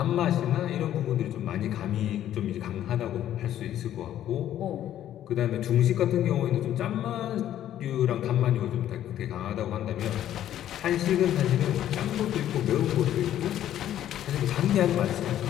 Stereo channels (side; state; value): right; quieter; 11.7 dB